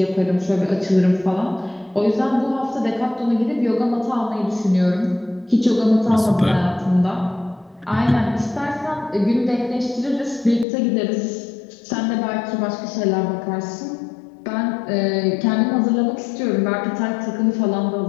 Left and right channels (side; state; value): right; drops out; at 10.7 s